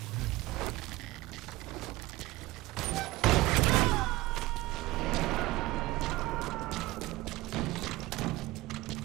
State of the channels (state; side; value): quieter; left; 19.5 dB